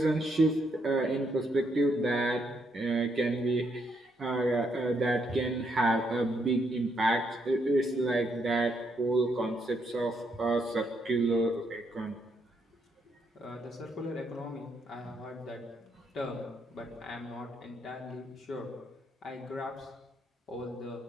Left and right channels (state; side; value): normal; both; correlation 0.75